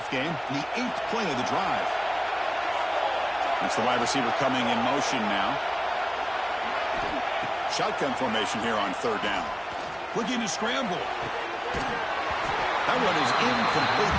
game. The 8th play of the drive. It's the wide receiver coming in motion now. Shotgun formation here on 3rd down. Looking to scramble. That one is incomplete.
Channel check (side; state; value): both; identical; correlation 1.00